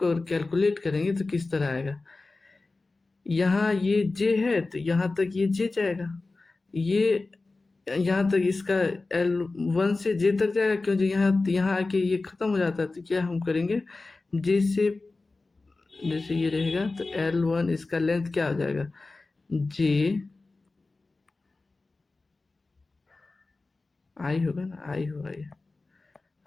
अगर कैलकुलेट करेंगे तो किस तरह आएगा। यहाँ ये जे है तो यहाँ तक ये जे जाएगा, ये यहाँ तक इसका L1 से जे तक जाएगा, क्योंकि यहाँ आके ये खत्म हो जाता है। तो क्या हम करेंगे, जे से जैसे ये रहेगा तो L1 इसका लेंथ क्या हो जाएगा, जे आई होगा ना, आई होगा, ये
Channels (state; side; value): quieter; right; 3.5 dB